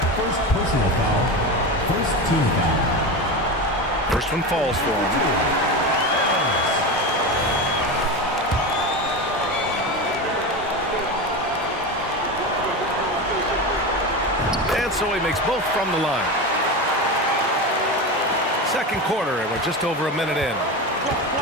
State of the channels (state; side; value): normal; both; correlation 0.22